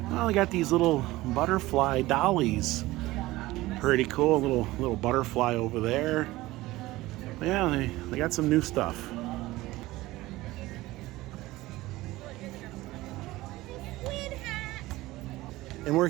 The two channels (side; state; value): left; quieter; 18.4 dB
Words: Well, they got these little butterfly dollies. Pretty cool, little butterfly over there. Yeah, they got some new stuff. And we're